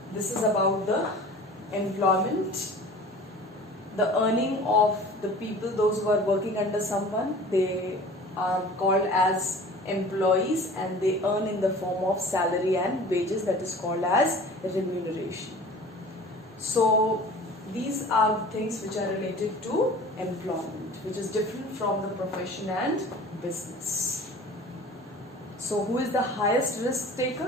this is about the employment. The earning of the people, those who are working under someone, they are called as employees, and they earn in the form of salary and wages, that is called as remuneration. So these are things which are related to employment, which is different from the profession and business. So who is the highest risk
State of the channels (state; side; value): normal; both; correlation 0.43